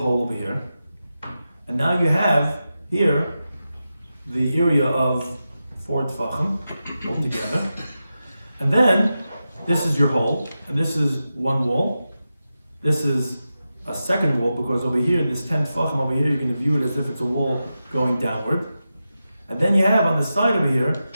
over here, and now you have here the area of 4 tefachim altogether, and then this is your hole, and this is one wall. This is a second wall, because over here, this 10 tefachim over here, you're going to view it as if it's a wall going downward. And then you have on the side over here,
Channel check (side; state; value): both; inverted; correlation -0.91